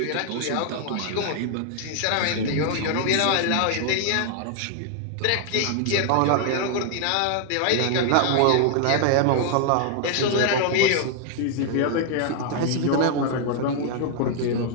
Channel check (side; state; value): both; different; correlation 0.00